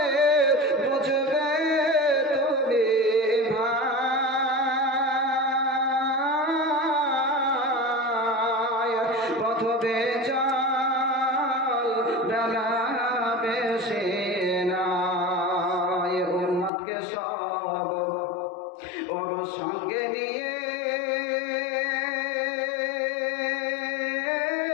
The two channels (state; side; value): drops out; right; at 16.7 s